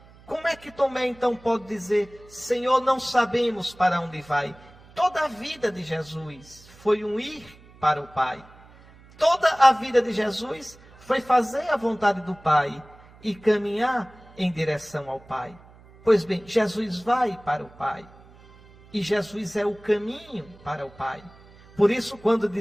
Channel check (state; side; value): noise; right; hum, 24 dB below the sound